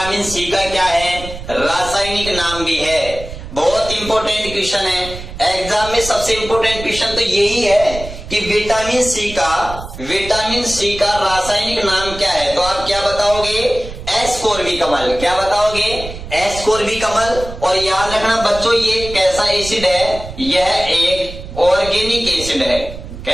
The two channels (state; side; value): noise; right; rumble, 11 dB below the sound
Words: सी का क्या है, रासायनिक नाम भी है। बहुत इंपॉर्टेंट क्वेश्चन है एग्जाम में, सबसे इंपॉर्टेंट क्वेश्चन तो यही है कि विटामिन सी का रासायनिक नाम क्या है। तो आप क्या बताओगे, एस्कोर्बिक अम्ल। क्या बताओगे, एस्कोर्बिक अम्ल। और याद रखना बच्चों ये कैसा एसिड है, यह एक ऑर्गेनिक एसिड है।